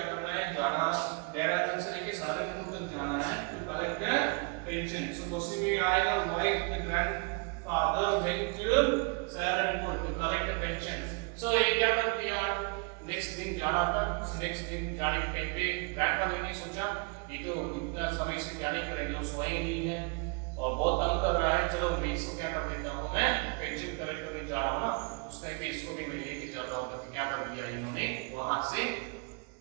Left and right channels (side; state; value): left; quieter; 33.7 dB